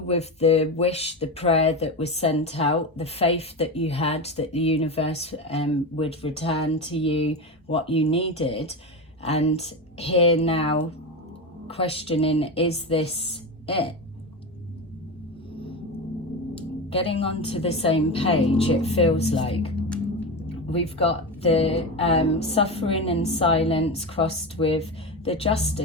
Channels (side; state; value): both; normal; correlation 0.20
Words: with the wish, the prayer that was sent out, the faith that you had that the universe would return to you what you needed. And here now questioning, is this it? Getting onto the same page, it feels like. We've got the suffering and silence crossed with the